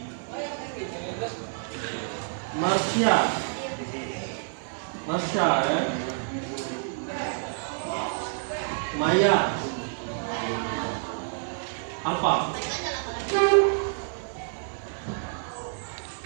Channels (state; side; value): silent; left; 57 dB below the other